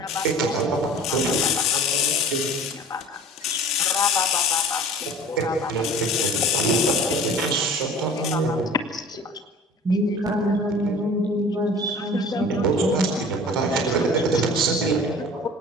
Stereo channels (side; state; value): both; normal; correlation 0.43